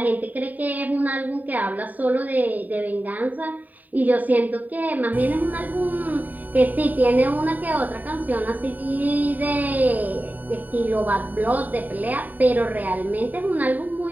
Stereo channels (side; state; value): left; late; 0.080 ms